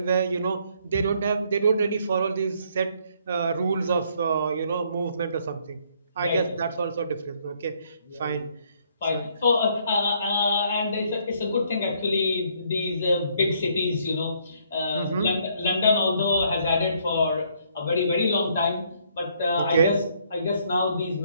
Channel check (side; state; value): both; inverted; correlation -0.67